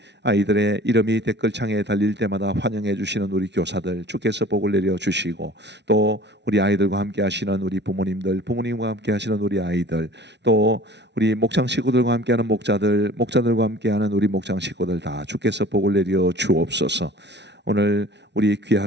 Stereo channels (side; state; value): left; late; 0.50 ms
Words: 아이들의 이름이 댓글창에 달릴 때마다 환영해 주시는 우리 교사들 주께서 복을 내려 주시고, 또 우리 아이들과 함께 하시는 우리 부모님들, 부모님과 함께 하시는 우리 아이들, 또 우리 목장 식구들과 함께하는 목자들, 목자들과 함께하는 우리 목장 식구들 다 주께서 복을 내려 주옵소서. 오늘 우리